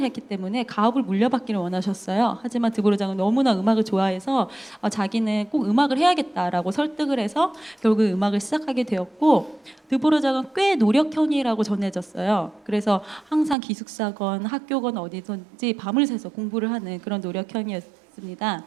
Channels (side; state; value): left; drops out; at 13.6 s